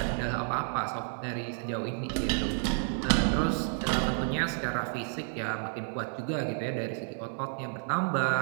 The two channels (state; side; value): silent; left; 57 dB below the other